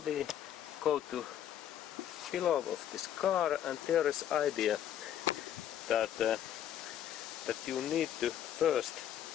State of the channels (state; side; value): quieter; right; 10.6 dB